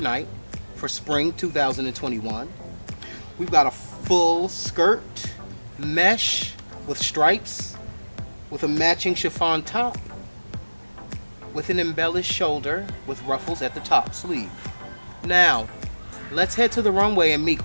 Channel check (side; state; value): both; inverted; correlation -1.00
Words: for spring 2021. We've got a full skirt, mesh with stripes, with a matching chiffon top, with an embellished shoulder with ruffles at the top sleeve. Now, let's head to the runway and meet